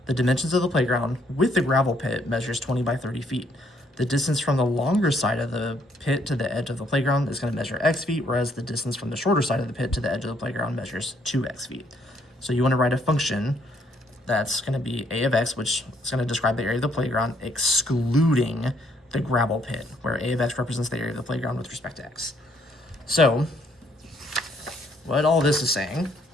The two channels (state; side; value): normal; both; correlation 0.69